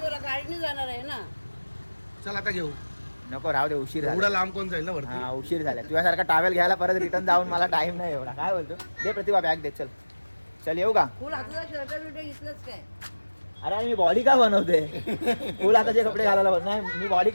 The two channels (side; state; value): both; inverted; correlation -1.00